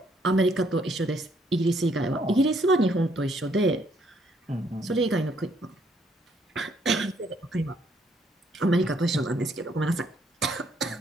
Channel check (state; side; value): normal; both; correlation 0.69